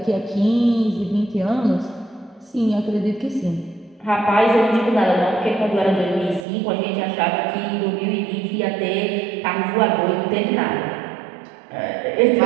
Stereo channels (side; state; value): left; drops out; at 6.5 s